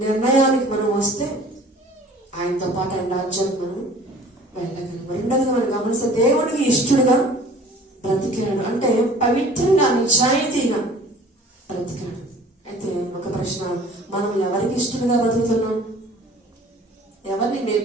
నిర్ణయానికి మనం వస్తే ఆయనతో పాటు ఆయన రాజ్యానికి మనం వెళ్ళగలం. రెండోదిగా మనం గమనిస్తే దేవుడికి ఇష్టడుగా బ్రతికాడు, అంటే పవిత్రంగా నిజాయితీగా బ్రతికాడు. అయితే ఒక ప్రశ్న, మనం ఎవరికి ఇష్టడుగా బ్రతుకుతున్నాం? ఎవరిని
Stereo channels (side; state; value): both; normal; correlation 0.48